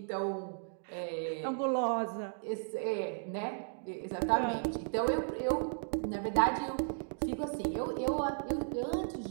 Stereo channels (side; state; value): left; silent; digital silence